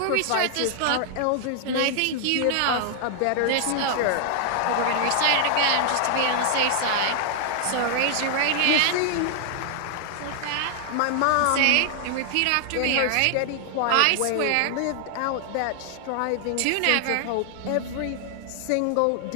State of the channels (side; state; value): both; different; correlation 0.00